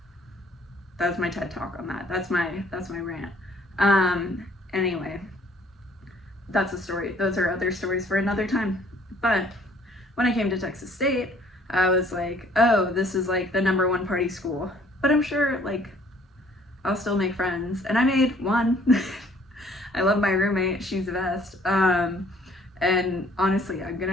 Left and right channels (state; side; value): normal; both; correlation 0.59